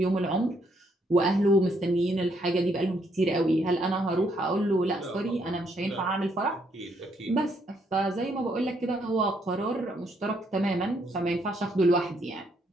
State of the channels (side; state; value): both; normal; correlation 0.72